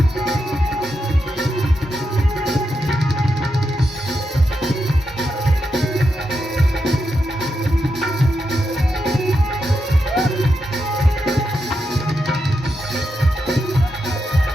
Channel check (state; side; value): normal; both; correlation 0.85